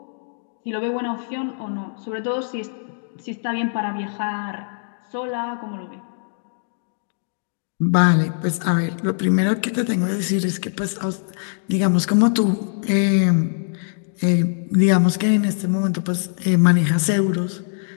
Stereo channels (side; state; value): right; silent; digital silence